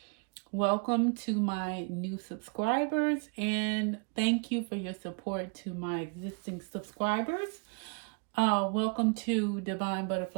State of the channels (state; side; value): quieter; left; 37.3 dB